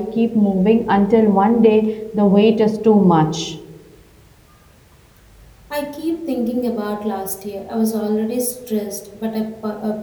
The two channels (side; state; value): both; identical; correlation 1.00